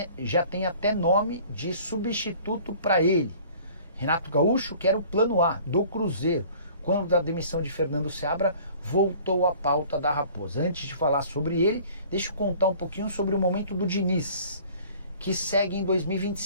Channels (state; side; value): inverted; both; correlation -0.50